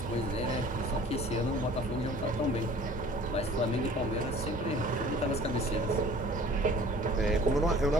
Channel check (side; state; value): both; normal; correlation 0.48